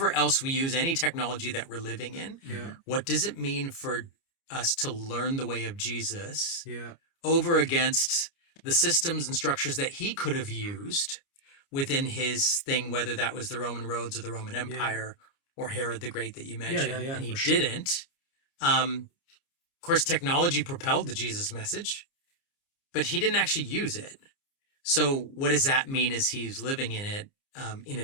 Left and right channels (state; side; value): late; right; 29 ms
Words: else we use any technology that we're living in. yeah, What does it mean for us to learn the way of Jesus yeah. over against the systems and structures that he could have used within his thing, whether that was the Roman roads or the Roman Empire or Herod the Great that you mentioned, yeah, and he for sure. didn't. Of course, technology propelled the Jesus message, but he didn't actually use it. So what does that mean as he's living in it in a